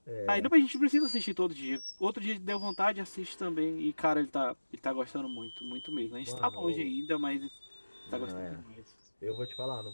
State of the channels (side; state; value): both; inverted; correlation -1.00